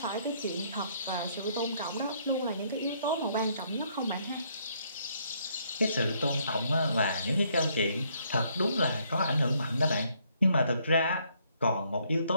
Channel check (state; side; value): inverted; both; correlation -0.69